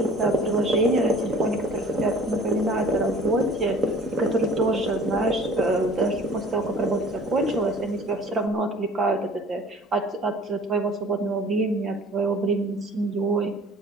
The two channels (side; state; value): both; normal; correlation 0.48